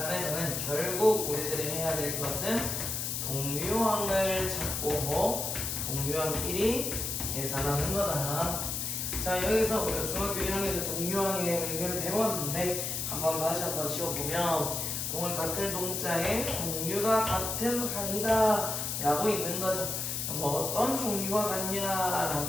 결국 우리들이 해야 될 것은 동류항을 찾고 동류항끼리 계산하는 거다. 자, 여기서 우리가 중학교 1학년 때 동류항의 의미를 배웠는데 다시 한번 지워보면 동을 같은 동자의 종류가 같은 항이다 라고 있는 거죠. 뭐 어떤 종류가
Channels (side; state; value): left; noise; hiss, 2 dB below the sound